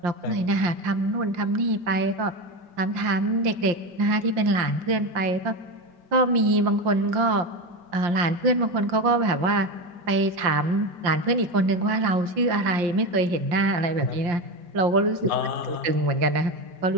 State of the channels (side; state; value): left; late; 5.7 ms